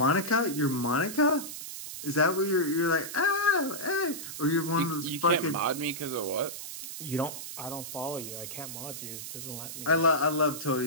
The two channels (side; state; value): right; noise; hiss, 9 dB below the sound